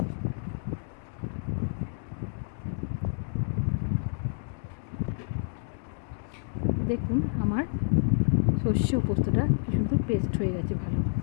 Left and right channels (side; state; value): right; silent; digital silence